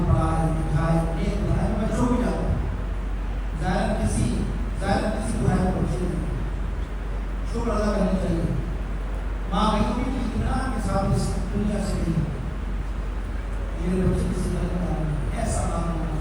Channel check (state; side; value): identical; both; correlation 1.00